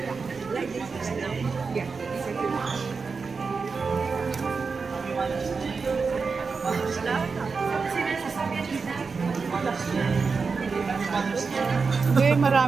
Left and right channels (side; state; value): left; quieter; 4.8 dB